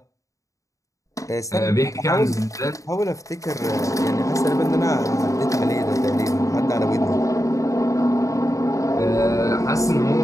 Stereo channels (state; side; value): late; right; 0.16 ms